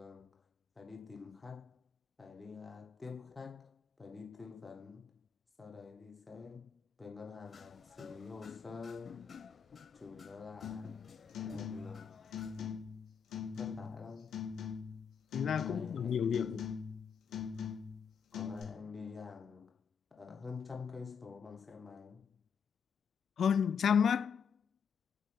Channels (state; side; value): quieter; right; 6.8 dB